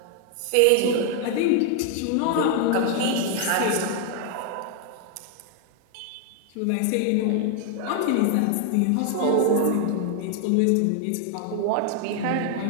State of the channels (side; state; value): both; different; correlation 0.00